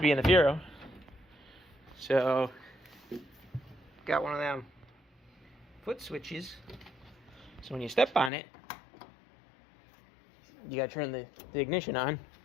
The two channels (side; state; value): right; drops out; at 8.3 s